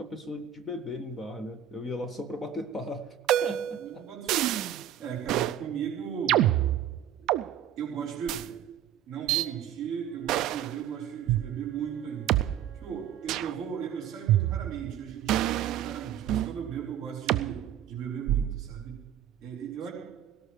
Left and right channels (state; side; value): quieter; left; 10.0 dB